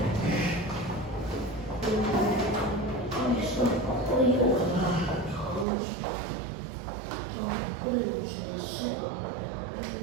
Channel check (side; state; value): left; drops out; at 5.7 s